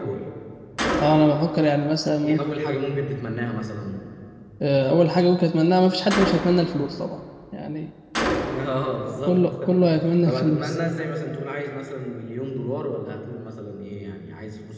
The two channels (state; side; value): identical; both; correlation 1.00